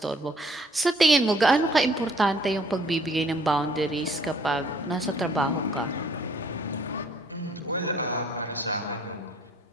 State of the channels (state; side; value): normal; both; correlation 0.60